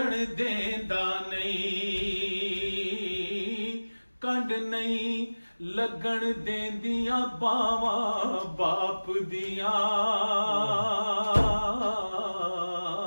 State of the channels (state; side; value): inverted; both; correlation -1.00